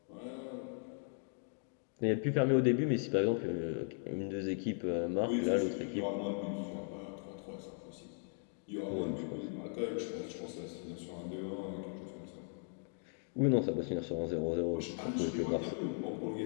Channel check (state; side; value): silent; right; 53 dB below the other